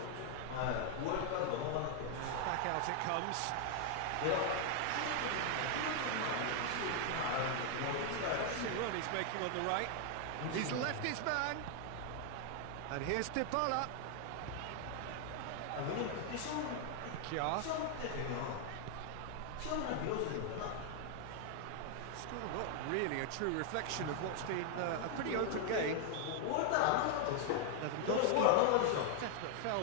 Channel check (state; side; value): different; both; correlation 0.00